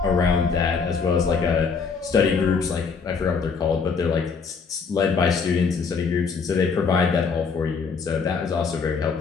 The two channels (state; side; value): quieter; right; 5.4 dB